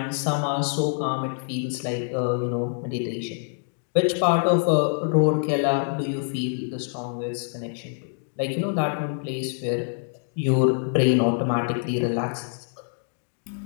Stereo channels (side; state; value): right; silent; digital silence